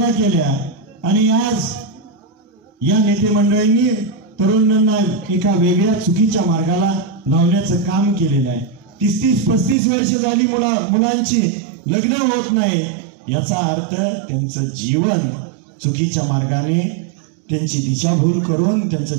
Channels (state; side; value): drops out; left; at 9.8 s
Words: केल्या आणि आज या नेते मंडळींनी तरुणांना एका वेगळ्या चुकीच्या मार्गाला लावण्याचं काम केलेलं आहे. 30-35 वर्ष झाली मुलांची लग्न होत नाही. याचा अर्थ त्यांचं जीवन चुकीच्या मार्गाने, त्यांची दिशाभूल करून त्यांचं